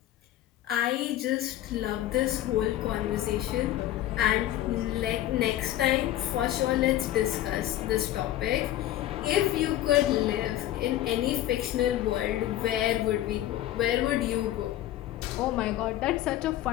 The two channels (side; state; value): right; quieter; 13.6 dB